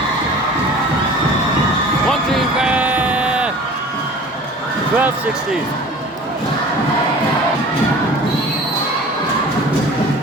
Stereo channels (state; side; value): normal; both; correlation 0.43